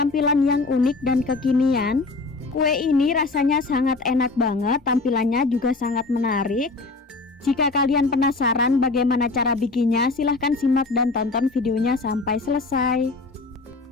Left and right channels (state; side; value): quieter; right; 3.6 dB